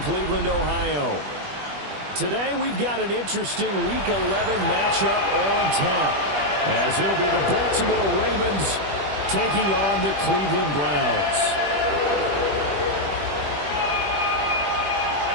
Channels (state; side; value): late; left; 21 ms